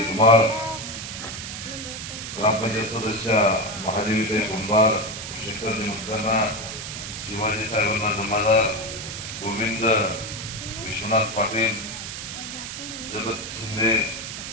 धुमाळ, ग्रामपंचायत सदस्य महादेवीताई कुंभार, शेखरजी मुस्काना, शिवाजी साहेबांना जमादार, गोविंद विश्वनाथ पाटील, जगत शिंदे,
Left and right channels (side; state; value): right; noise; hiss, 8 dB below the sound